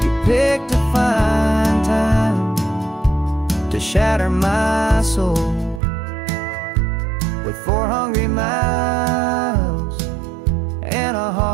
You picked a fine time to shatter my soul with 4 hungry mouths and a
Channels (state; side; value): drops out; left; at 5.8 s